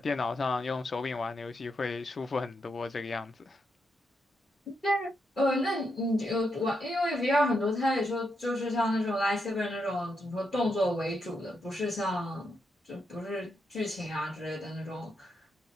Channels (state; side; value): normal; both; correlation 0.82